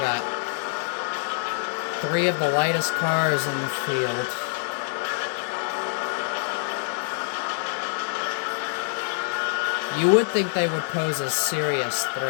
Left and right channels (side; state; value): right; silent; 61 dB below the other